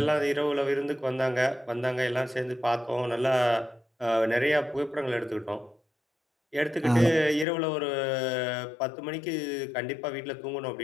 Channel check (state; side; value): drops out; right; at 7.5 s